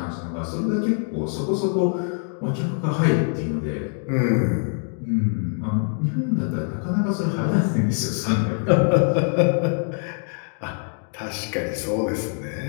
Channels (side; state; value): right; silent; 55 dB below the other